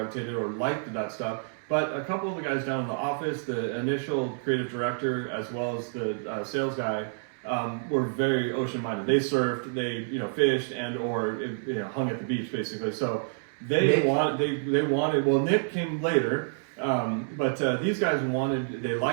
or liked that stuff. But a couple of the guys down in the office, the initial creative director as well as the sales guy, were very ocean minded. They surfed, they fished and or hung at the beach basically. So they wanted. Well, Nick came later. But these guys they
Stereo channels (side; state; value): left; silent; 59 dB below the other